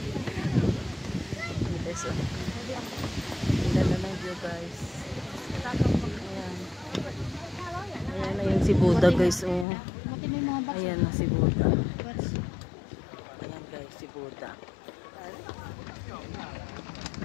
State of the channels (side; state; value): right; drops out; at 9.7 s